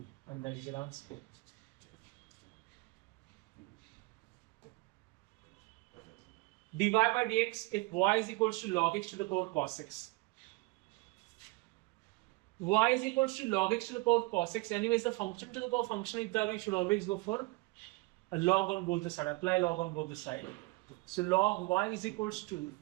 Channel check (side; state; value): left; quieter; 23.9 dB